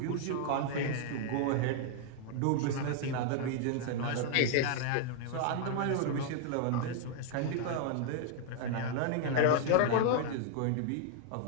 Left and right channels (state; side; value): different; both; correlation 0.00